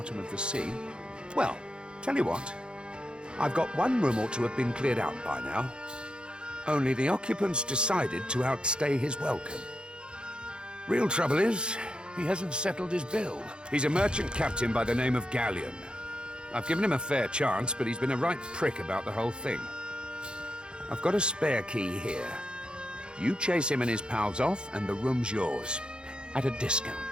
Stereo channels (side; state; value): left; late; 0.051 ms